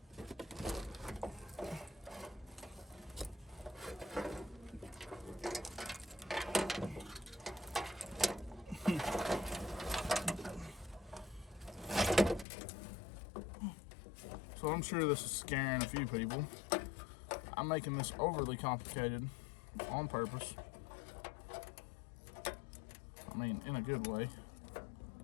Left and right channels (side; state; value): right; drops out; at 12.5 s